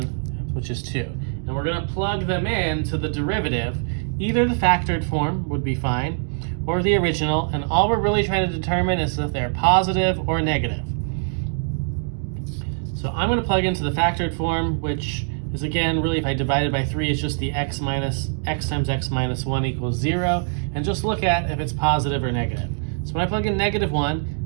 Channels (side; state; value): left; silent; digital silence